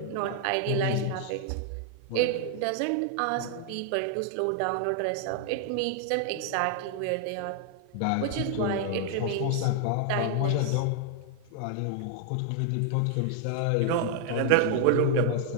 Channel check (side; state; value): both; different; correlation 0.00